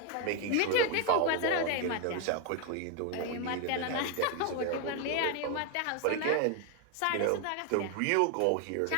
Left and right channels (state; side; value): different; both; correlation 0.01